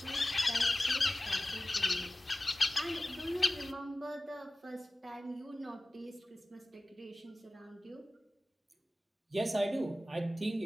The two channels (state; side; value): normal; both; correlation 0.96